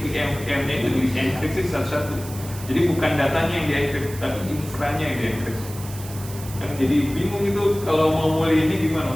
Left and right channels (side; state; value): right; noise; hiss, 15 dB below the sound